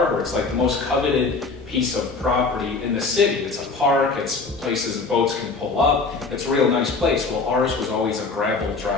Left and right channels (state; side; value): quieter; right; 4.1 dB